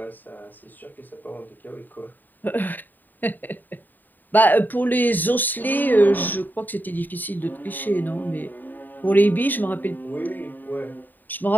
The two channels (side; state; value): right; late; 0.088 ms